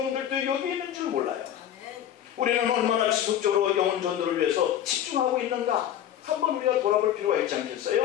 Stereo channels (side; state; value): right; quieter; 10.6 dB